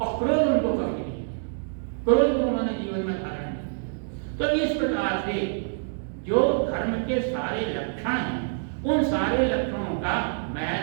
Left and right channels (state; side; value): silent; left; digital silence